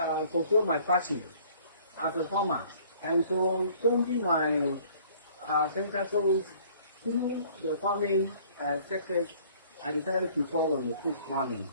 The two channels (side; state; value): both; inverted; correlation -0.55